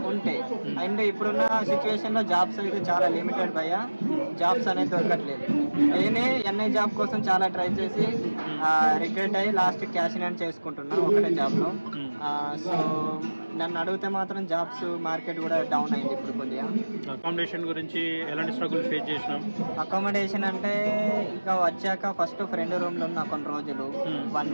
ఉంటే. అండ్ ఇప్పుడున్న సిచ్యువేషన్ లో జాబ్స్ అయితే చాలా లిమిటెడ్ భయ్యా, జాబ్స్ అనేది దొరకట్లేదు. నేనే ఎన్ఐ జాబ్ కోసం చాలా ట్రై చేసి రిగ్రెట్ అయ్యి లాస్ట్ క్యాష్ ఇన్ హ్యాండ్ చేసుకుంటున్నా ఒకటే జాబ్ లో. సో నన్ను అడిగితే మాత్రం జాబ్స్ మార్కెట్ కూడా డౌన్ అయింది ఇప్పుడు కొద్దిగా. అకామిడేషన్ గురించి ఎలాంటి స్ట్రగుల్ ఫేస్ చేసినాం? అకామిడేషన్ అంటే ఇంకా వచ్చాక ఫస్ట్ ఫ్రెండ్ రూమ్ లో ఉన్న కొన్ని రోజులు 1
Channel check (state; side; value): inverted; both; correlation -1.00